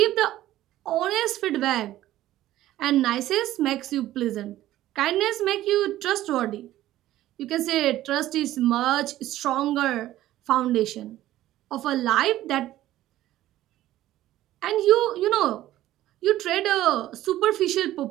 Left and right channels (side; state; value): left; quieter; 14.3 dB